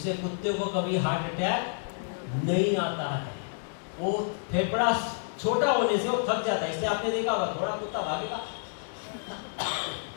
कुत्ते को कभी हार्ट अटैक नहीं आता है। वो फेफड़ा छोटा होने से वो थक जाता है, इसलिए आपने देखा होगा थोड़ा कुत्ता भागेगा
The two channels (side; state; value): right; silent; digital silence